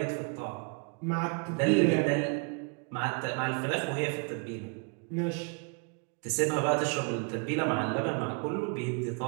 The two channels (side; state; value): left; quieter; 36.5 dB